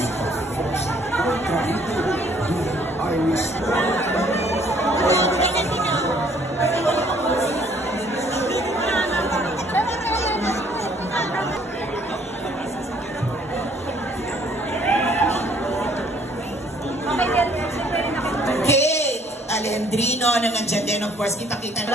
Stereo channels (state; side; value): normal; both; correlation 0.61